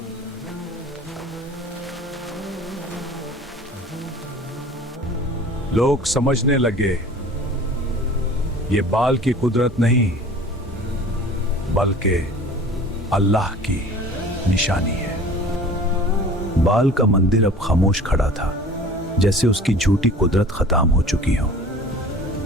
लोग समझने लगे, ये बाल की कुदरत नहीं बल्कि अल्लाह की निशानी है। बाल का मंदिर अब खामोश खड़ा था, जैसे उसकी झूठी कुदरत खत्म हो चुकी हो।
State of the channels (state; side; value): normal; both; correlation 0.44